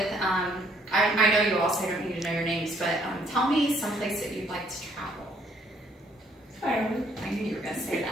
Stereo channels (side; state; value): both; normal; correlation 0.66